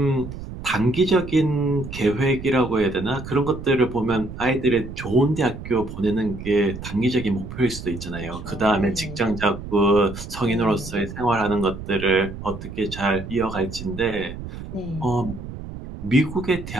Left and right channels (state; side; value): noise; right; rumble, 10 dB below the sound